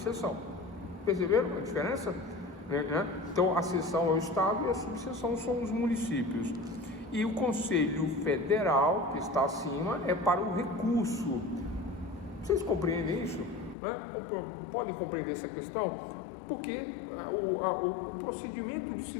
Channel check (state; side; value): drops out; right; at 13.8 s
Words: Perceberam a diferença? Então a seção é o estado e a subseção são os municípios. E o Conselho Federal, que está acima, é para o recurso. Vocês compreendem isso? Né? Podem compreender essa questão? porque o procedimento